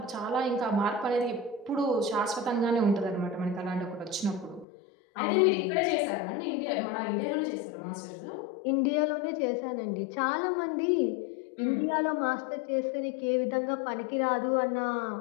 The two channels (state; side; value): drops out; right; at 4.7 s